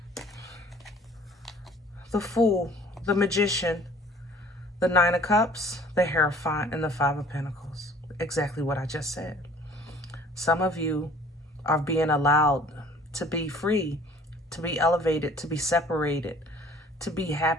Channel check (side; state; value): both; normal; correlation 0.52